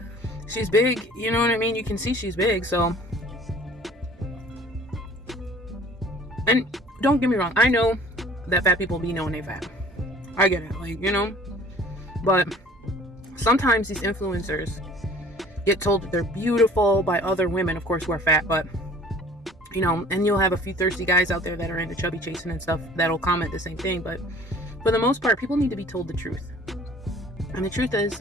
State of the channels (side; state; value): both; normal; correlation 0.50